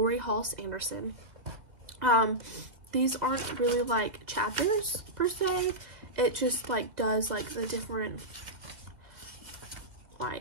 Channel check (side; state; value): left; late; 2.0 ms